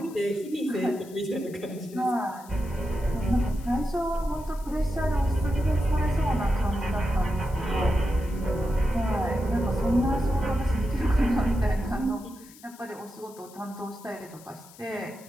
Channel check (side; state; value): left; noise; hiss, 22 dB below the sound